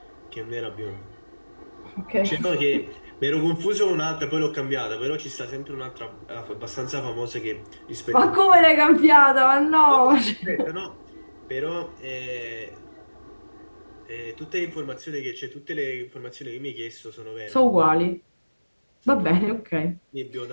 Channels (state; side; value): inverted; both; correlation -1.00